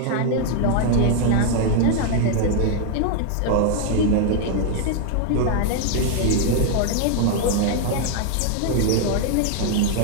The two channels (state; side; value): different; both; correlation 0.00